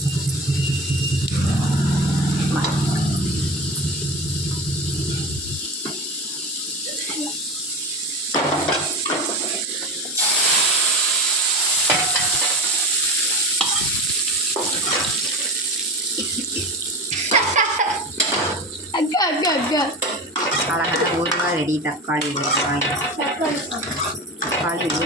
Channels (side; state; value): both; normal; correlation 0.29